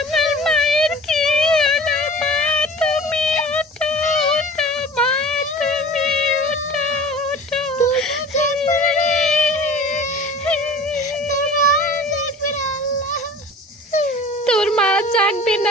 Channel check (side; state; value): both; normal; correlation 0.40